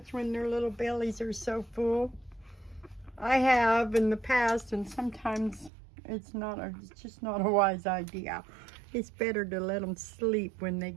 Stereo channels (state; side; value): drops out; left; at 5.7 s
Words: when their little bellies are so full. I have in the past, and sometimes it's just not a wise idea. It's better to let them sleep when they